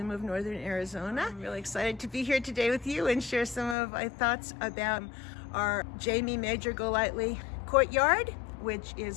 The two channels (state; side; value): drops out; right; at 3.8 s